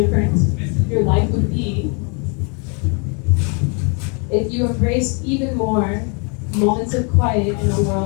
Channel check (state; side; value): quieter; right; 35.6 dB